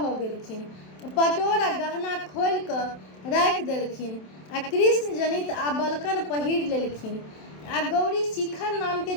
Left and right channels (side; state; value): right; late; 27 ms